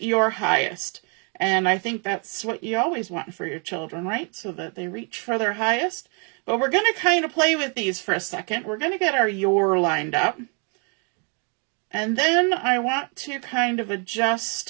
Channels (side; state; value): left; quieter; 37.8 dB